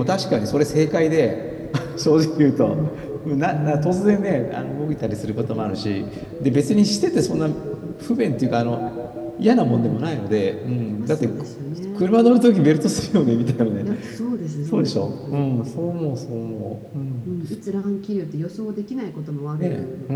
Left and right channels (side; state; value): both; identical; correlation 1.00